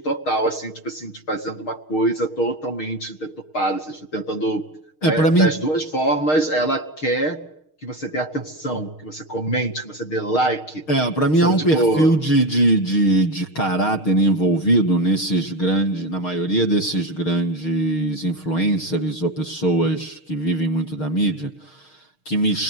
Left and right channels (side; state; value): right; late; 6.5 ms